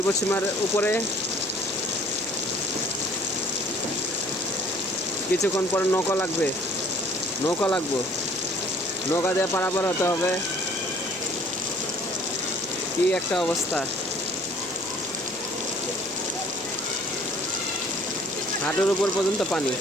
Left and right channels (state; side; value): noise; left; hum, 24 dB below the sound